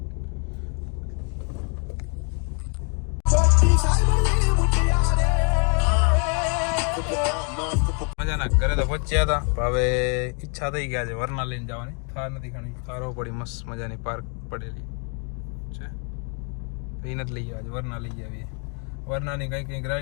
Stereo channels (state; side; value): quieter; right; 39.9 dB